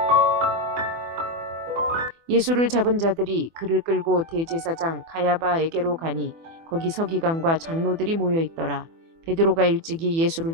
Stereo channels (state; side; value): late; left; 24 ms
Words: 예수를 잡은 자들이 그를 끌고 대제사장 가야바에게로 가니 거기 서기관과 장로들이 모여 있더라. 베드로가 일찍이 예수를